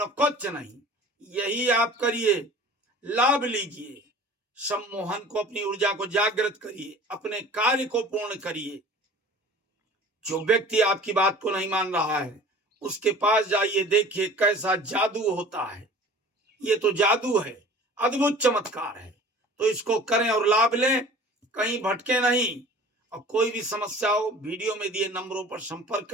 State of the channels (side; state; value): both; normal; correlation 0.44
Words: कुछ नहीं। यही आप करिए, लाभ लीजिए, सम्मोहन को, अपनी ऊर्जा को जागृत करिए, अपने कार्य को पूर्ण करिए। जो व्यक्ति आपकी बात को नहीं मान रहा है उसके पास जाइए, देखिए कैसा जादू होता है। ये तो जादू है, अद्भुत चमत्कार है। तो इसको करें और लाभ लें, कहीं भटके नहीं। और कोई भी समस्या हो, वीडियो में दिए नंबरों पर संपर्क